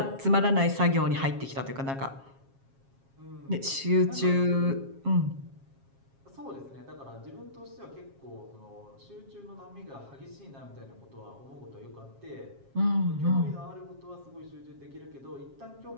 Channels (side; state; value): left; late; 7.4 ms